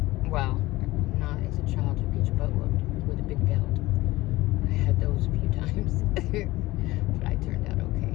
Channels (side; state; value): right; quieter; 18.8 dB